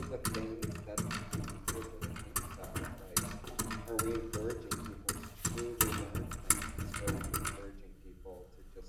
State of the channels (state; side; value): identical; both; correlation 1.00